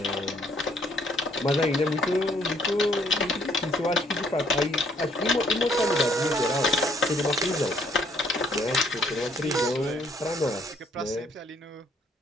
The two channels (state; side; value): normal; both; correlation 0.66